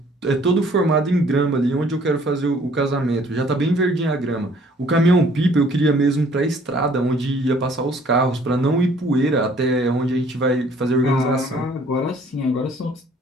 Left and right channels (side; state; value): both; normal; correlation 0.58